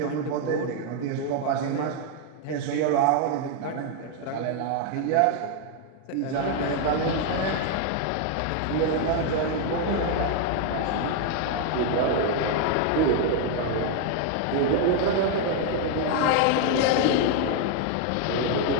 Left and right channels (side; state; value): both; different; correlation 0.00